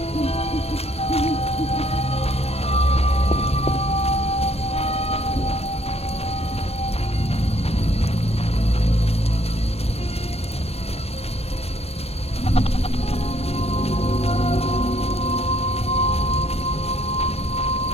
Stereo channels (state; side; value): late; right; 0.30 ms